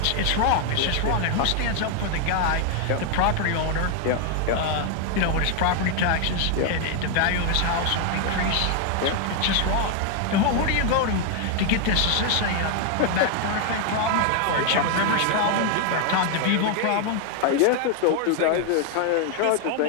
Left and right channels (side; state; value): both; different; correlation 0.00